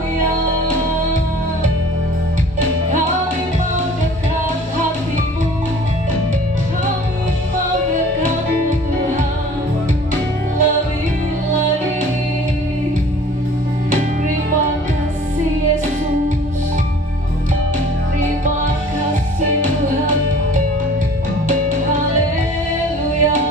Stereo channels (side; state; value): both; normal; correlation 0.48